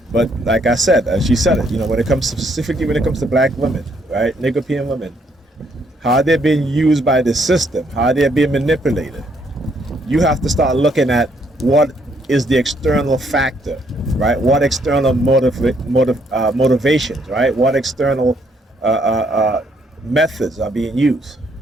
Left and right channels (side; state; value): both; normal; correlation 0.70